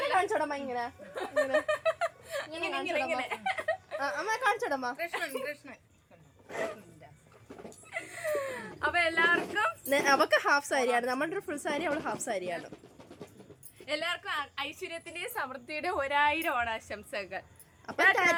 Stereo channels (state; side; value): identical; both; correlation 1.00